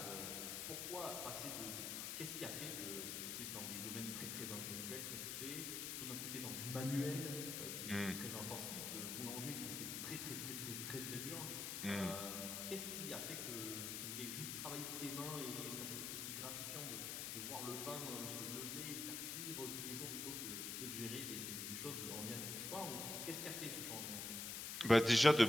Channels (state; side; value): noise; left; hiss, 3 dB below the sound